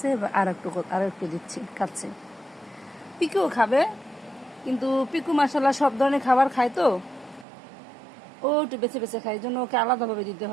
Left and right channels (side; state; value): left; drops out; at 7.5 s